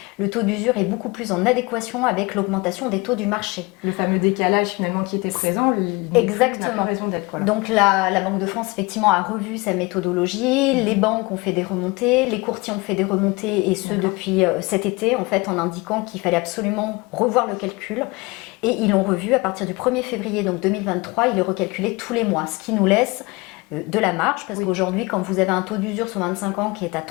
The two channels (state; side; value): quieter; right; 24.9 dB